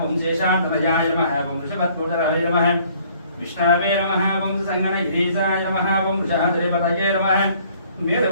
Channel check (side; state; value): both; inverted; correlation -0.59